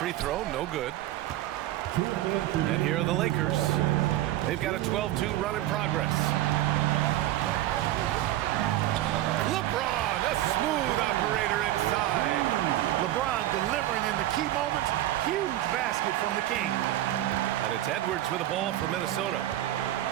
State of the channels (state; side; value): quieter; left; 14.3 dB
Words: throw, no good. And here are the Lakers. They've got a 12-2 run in progress. LeBron, a smooth operator inside. LeBron delivering in the key moments. Huge basket from the King. And it's Edwards with a ball for Minnesota.